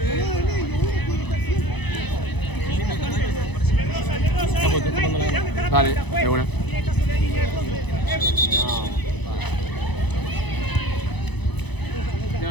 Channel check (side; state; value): right; late; 1.0 ms